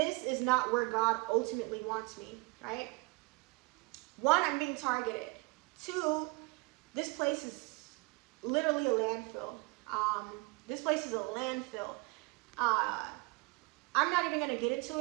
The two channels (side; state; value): left; quieter; 27.9 dB